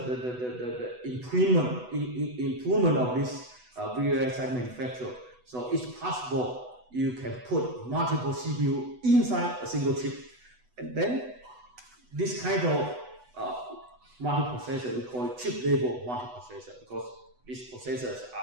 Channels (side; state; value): left; late; 8.0 ms